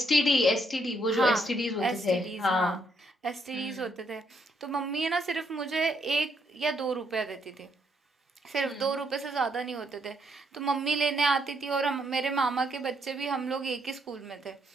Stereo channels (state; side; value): normal; both; correlation 0.73